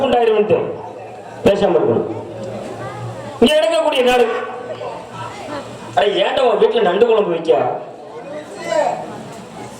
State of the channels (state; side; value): identical; both; correlation 1.00